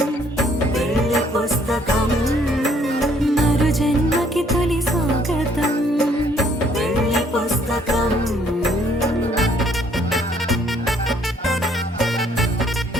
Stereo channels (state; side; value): normal; both; correlation 0.65